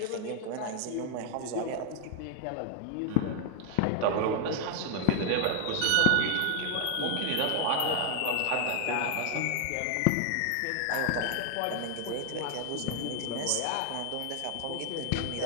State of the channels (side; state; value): both; different; correlation 0.00